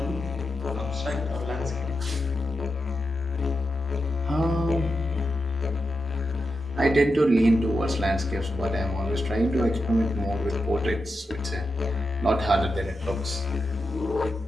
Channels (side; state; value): both; normal; correlation 0.88